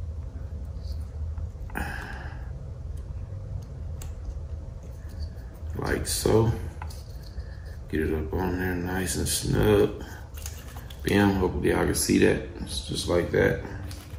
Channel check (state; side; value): identical; both; correlation 1.00